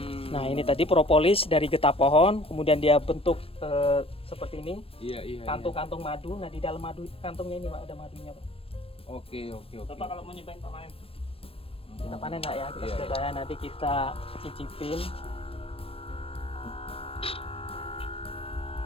Nah ini tadi propolis dari getah pohon, kemudian dia bentuk seperti ini, Iya. kantung-kantung madu. Nah di dalam madu kantungnya ini Pak ada madunya Pak. Oke. Bapak kalau mau nyobain Pak panen, kita panen Pak ya, kita Iya, sudah tanya, nanti kita cicipin.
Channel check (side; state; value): right; late; 0.28 ms